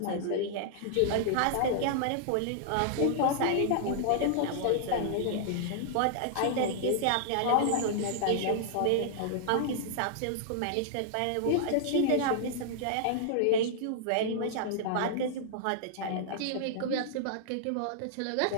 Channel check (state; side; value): different; both; correlation -0.01